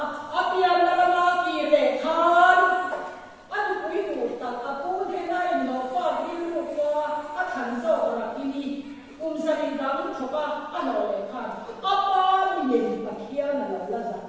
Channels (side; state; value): both; identical; correlation 1.00